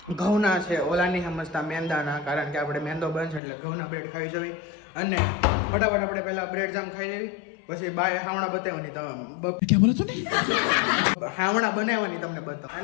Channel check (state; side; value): drops out; right; at 3.4 s